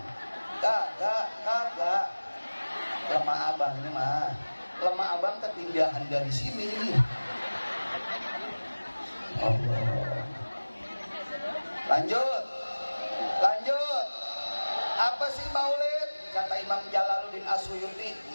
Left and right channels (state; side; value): inverted; both; correlation -1.00